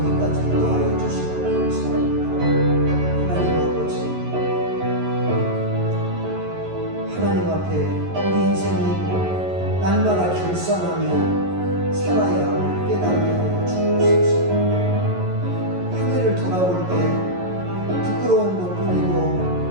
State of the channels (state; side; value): late; left; 11 ms